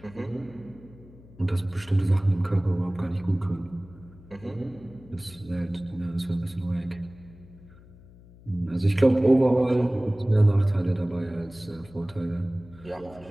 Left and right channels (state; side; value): noise; left; hum, 22 dB below the sound